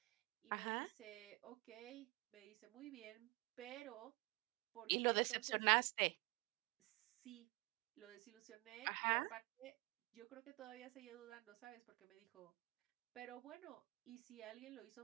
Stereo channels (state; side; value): quieter; left; 25.3 dB